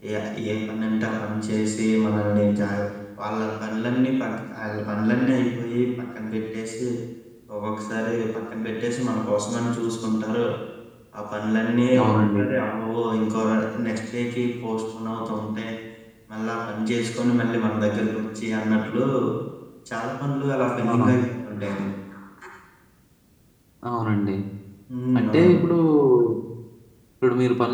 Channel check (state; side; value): identical; both; correlation 1.00